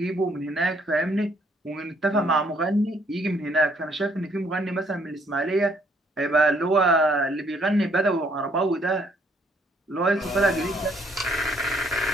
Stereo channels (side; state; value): both; normal; correlation 0.67